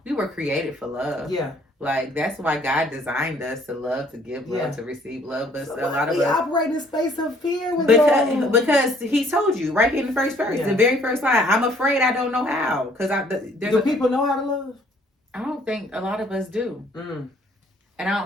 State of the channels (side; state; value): both; normal; correlation 0.61